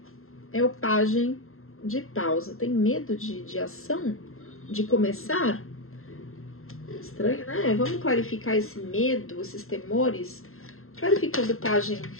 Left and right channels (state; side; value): late; right; 0.61 ms